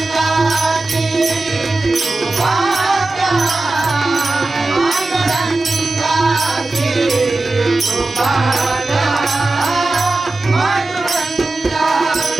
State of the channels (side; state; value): left; quieter; 3.1 dB